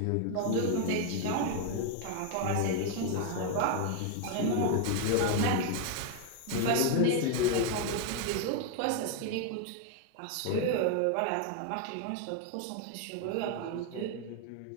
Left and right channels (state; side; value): different; both; correlation 0.01